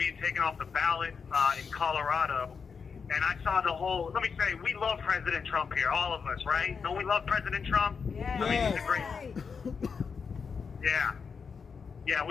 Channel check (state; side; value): quieter; right; 5.7 dB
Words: taken off the ballot in Colorado, and I saw the whole. Let me say, we love President Trump here, all of us, right? Don't we love President Trump? Yeah. I mean, he's a great. Yeah,